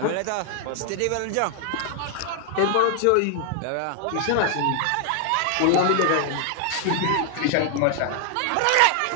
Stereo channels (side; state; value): both; different; correlation 0.00